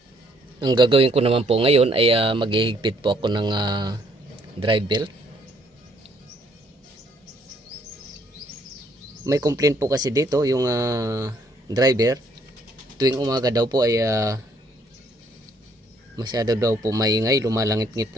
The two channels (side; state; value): both; normal; correlation 0.66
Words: Ang gagawin ko naman po ngayon ay maghihigpit po ako ng drive belt. May complaint po kasi dito yung driver, tuwing umaga daw po ay masyado daw po maingay, lumalangit-ngit